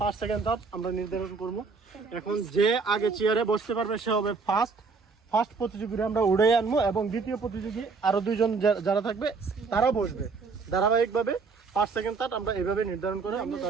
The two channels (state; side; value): quieter; left; 4.7 dB